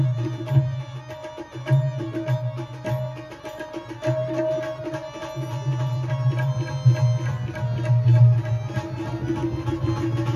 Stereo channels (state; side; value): identical; both; correlation 1.00